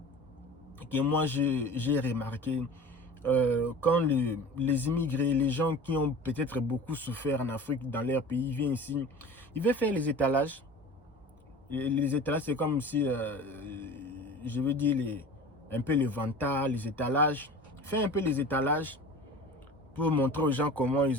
que moi j'ai remarqué, quand les immigrés, les gens qui ont peut-être beaucoup souffert en Afrique, dans leur pays, viennent ici, ils veulent faire les étalages. Et les étalages, c'est comme si, je veux dire, un peu les vantards, les étalages. Faire un peu les étalages pour montrer aux gens comment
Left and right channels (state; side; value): normal; both; correlation 0.38